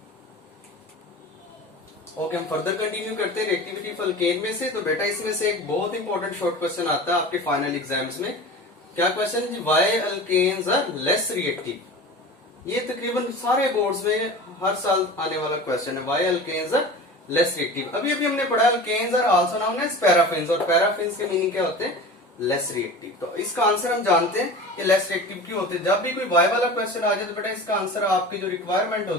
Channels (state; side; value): normal; both; correlation 0.34